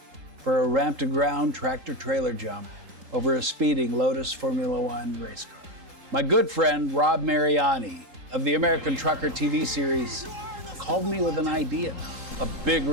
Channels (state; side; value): late; left; 3.8 ms